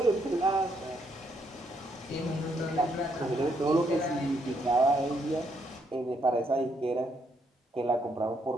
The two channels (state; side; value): normal; both; correlation 0.74